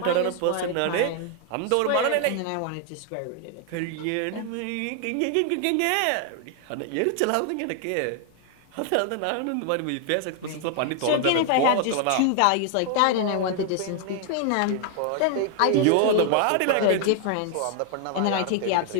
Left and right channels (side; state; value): both; different; correlation 0.00